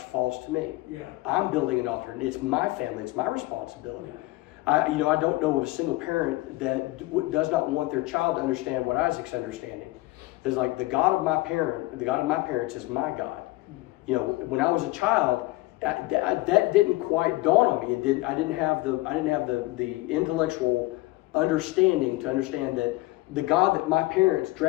false to me. Yeah. I'm building an altar, and it's my family, it's my responsibility. Yeah. I don't know of a single parent that does not want their child to understand what Isaac's understanding. It's like the God of my parents is my God. When I was a child, that didn't quite dawn on me. I didn't have the intellectual understanding to understand that the God that my parents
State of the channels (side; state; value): right; quieter; 19.8 dB